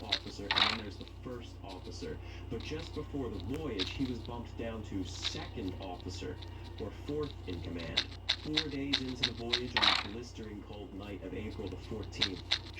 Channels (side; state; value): both; identical; correlation 1.00